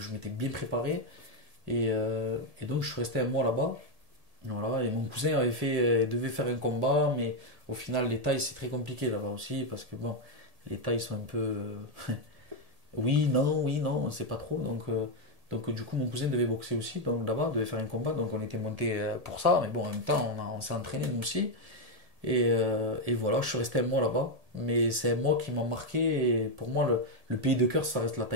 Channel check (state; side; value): late; left; 1.8 ms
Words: m'étais bien préparé. Et donc je suis resté un mois là-bas. Voilà, et mon cousin devait faire un combat, mais au final, les tailles, c'est très compliqué là-bas aussi, parce que bon, les tailles sont un peu. Oui, non, on sait pas trop. Donc du coup, mon cousin devait boxer aussi, donc là-bas, devait faire un combat, donc on était monté pour ça, mais bon, en même temps, on s'est entraîné nous aussi. Et voilà, je suis resté un mois là-bas, mais c'est un mois qui m'a marqué, et pour moi, le pays de cœur, ça reste la